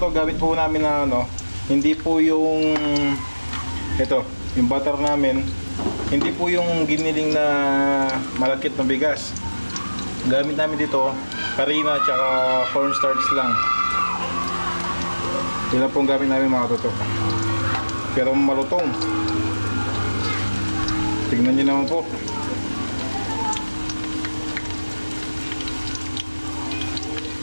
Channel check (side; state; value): both; inverted; correlation -1.00